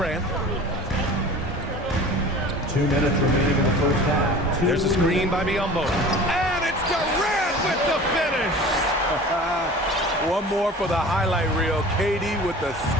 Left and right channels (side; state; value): both; normal; correlation 0.40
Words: 2 minutes remaining in the first half. There's a screen by Biyombo. And it's Durant with the finish. One more for the highlight reel. KD with the